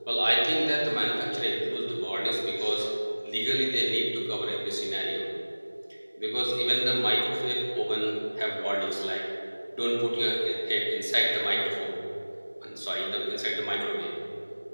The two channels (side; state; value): both; inverted; correlation -1.00